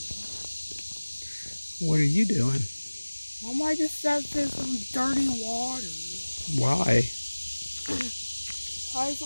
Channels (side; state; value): both; inverted; correlation -1.00